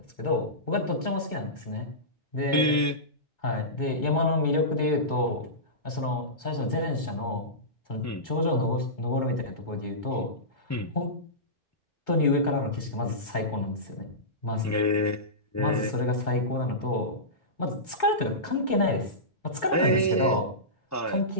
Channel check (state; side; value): normal; both; correlation -0.19